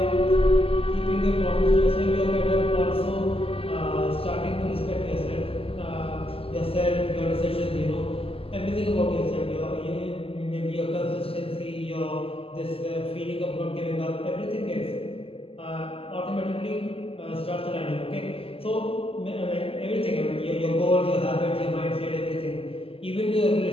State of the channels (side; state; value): right; late; 0.27 ms